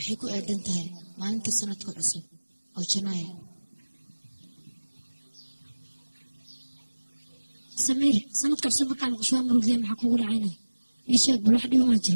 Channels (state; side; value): inverted; both; correlation -1.00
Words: ku aadan tahay maalinta sanadka cusub oo Janaayo سمير سندك عصب مركا مقشوها مروق ذي محكو قول عينه يشاك بالواحد يوم